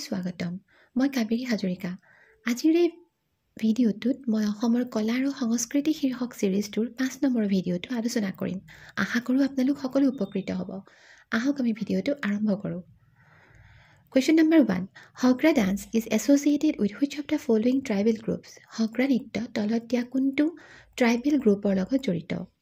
স্বাগতম মই কাবেৰী হাজৰিকা আজিৰ এই ভিডিঅ'টোত মই অসমৰ কলা আৰু সংস্কৃতি শীৰ্ষক সিৰিজটোৰ 5 নম্বৰ ভিডিঅ'টো আলোচনা কৰিম আশা কৰোঁ আপোনালোক সকলো উপকৃত হ'ব আহক আমি ভিডিঅ'টো আৰম্ভ কৰোঁ Question number 1 Hogra dance is associated with which of the following tribal groups Hogra নৃত্য তলত দিয়া কোনটো ট্ৰাইবেল গ্ৰুপৰ লগত জড়িত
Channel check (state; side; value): identical; both; correlation 1.00